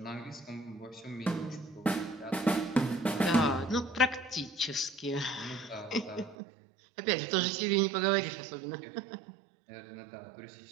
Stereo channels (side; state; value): left; drops out; at 6.4 s